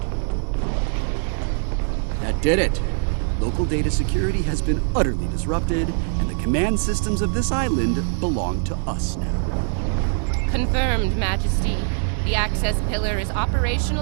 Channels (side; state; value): left; silent; digital silence